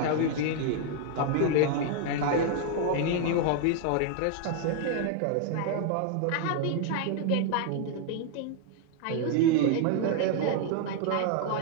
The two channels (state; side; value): different; both; correlation 0.00